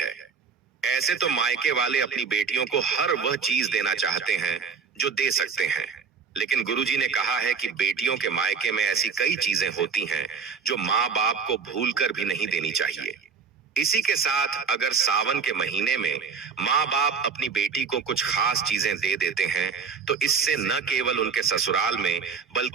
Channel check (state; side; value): quieter; left; 5.8 dB